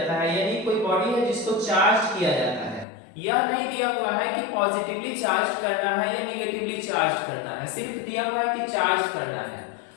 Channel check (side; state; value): right; drops out; at 2.9 s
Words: है, यानी कोई बॉडी है जिसको चार्ज किया जाता है। यह नहीं दिया हुआ है कि पॉजिटिवली चार्ज करना है या निगेटिवली चार्ज करना है, सिर्फ दिया हुआ है कि चार्ज करना है।